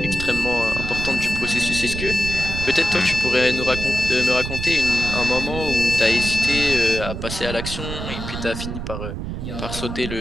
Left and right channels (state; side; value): noise; right; rumble, 6 dB below the sound